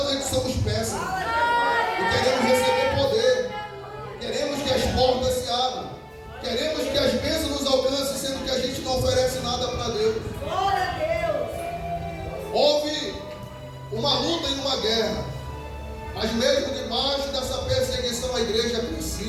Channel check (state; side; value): identical; both; correlation 1.00